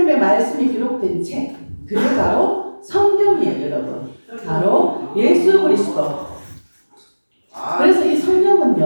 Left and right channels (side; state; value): both; inverted; correlation -1.00